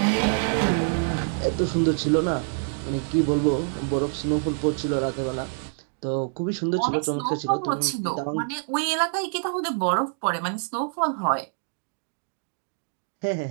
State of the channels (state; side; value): silent; left; digital silence